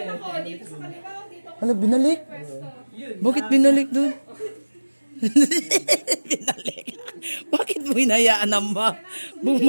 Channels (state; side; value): inverted; both; correlation -1.00